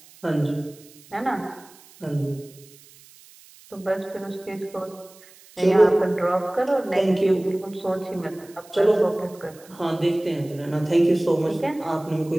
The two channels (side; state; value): right; noise; hiss, 24 dB below the sound